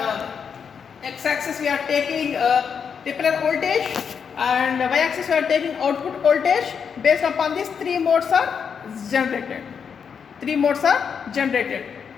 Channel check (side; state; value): right; quieter; 6.7 dB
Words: x-axis we are taking repeller voltage, and y-axis we are taking output voltage. Based upon these 3 modes are generated. 3 modes are generated.